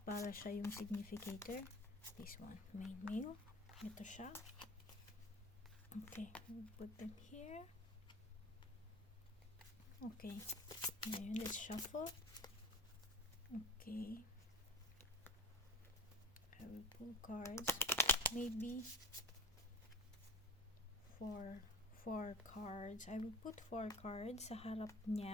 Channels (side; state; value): both; normal; correlation 0.34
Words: Para siya yung significator. This one, main male. Ito siya. Okay, we'll put them here. Okay, ngayon let's shuffle. Okay, I will pull cards. Maybe four cards. I will put 4 cards sa harap